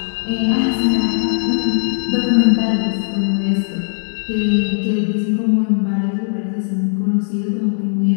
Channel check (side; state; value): right; silent; digital silence